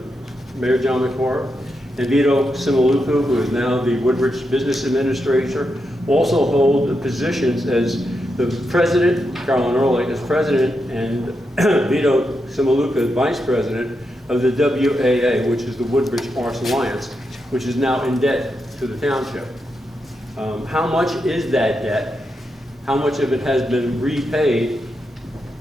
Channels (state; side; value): normal; both; correlation 0.85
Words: Mayor John McCord, and Vito Simaluku, who is now the Woodbridge Business Administrator, also hold the positions as the president, Carolyn Ehrlich as president, and Vito Simaluku as vice president of the WAA, which is the Woodbridge Arts Alliance, which is now in debt to the township. How much is that debt? How much of it has been repaid,